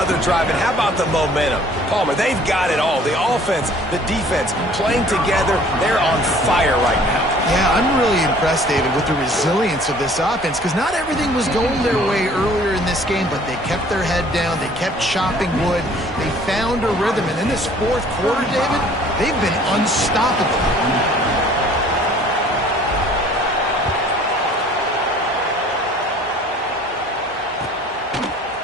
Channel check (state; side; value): normal; both; correlation 0.53